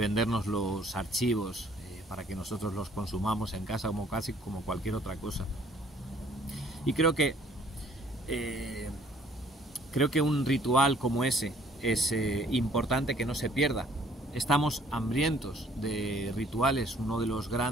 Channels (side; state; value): both; normal; correlation 0.59